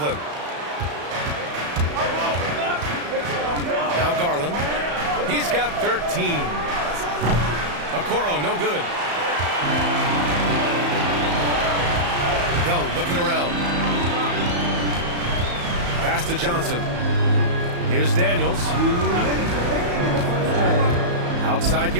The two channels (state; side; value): late; left; 34 ms